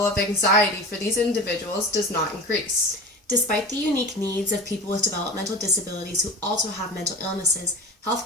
of anxiety for these individuals does not increase. Despite the unique needs of people with developmental disabilities who also have mental illnesses,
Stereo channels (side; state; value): both; normal; correlation 0.33